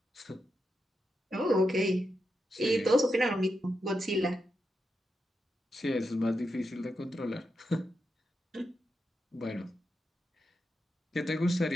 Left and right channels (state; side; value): normal; both; correlation 0.86